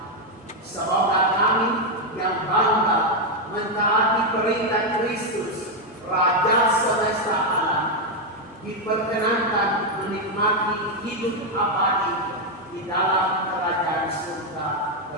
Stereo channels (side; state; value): both; normal; correlation 0.03